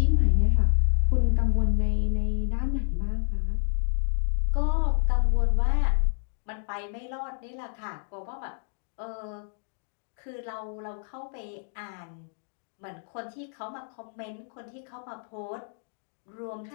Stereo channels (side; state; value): right; silent; digital silence